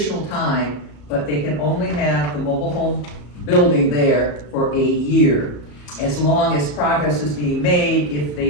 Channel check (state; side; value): late; right; 34 ms